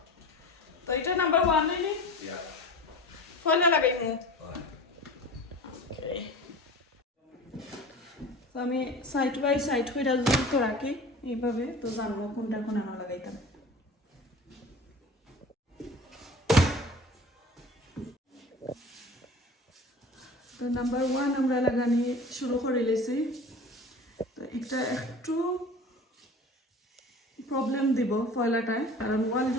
তো এটা নাম্বার 1 নেই ফয়লা লাগাইমু ওকে তো আমি সাইড বাই সাইড কইরা যদি তো রাখি এইভাবে তো জানবো কোনটা কোন আনা লাগাইতাম তো নাম্বার 1 আমরা লাগানি শুরু করে লেছি তো এটা একটু প্রবলেম দিব ফয়লাটায় কারণ ওয়াল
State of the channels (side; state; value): both; normal; correlation 0.38